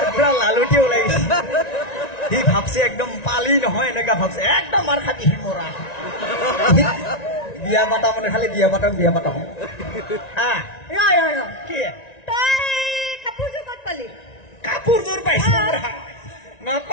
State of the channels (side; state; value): right; late; 1.9 ms